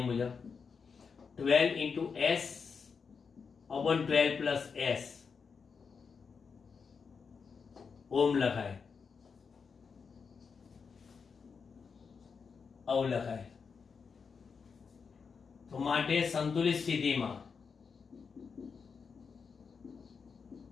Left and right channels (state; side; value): quieter; right; 5.6 dB